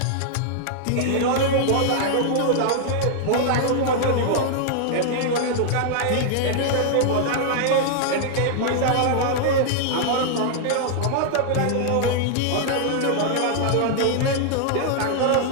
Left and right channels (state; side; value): different; both; correlation -0.01